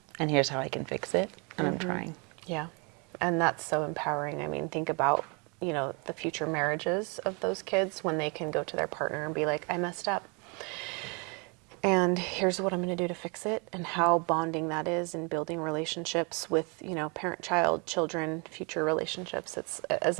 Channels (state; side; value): quieter; left; 32.2 dB